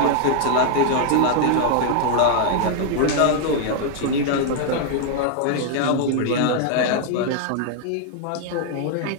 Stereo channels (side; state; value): both; different; correlation 0.00